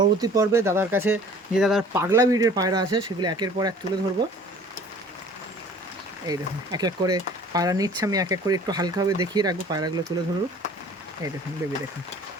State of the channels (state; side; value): normal; both; correlation 0.49